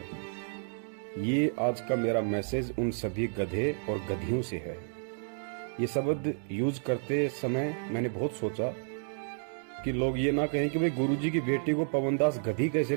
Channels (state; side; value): silent; left; digital silence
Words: ये आज का मेरा मैसेज उन सभी गधे और गधियों से है। ये शब्द यूज करते समय मैंने बहुत सोचा कि लोग ये ना कहें कि भाई गुरुजी की बेटी को पवनदास गधी कैसे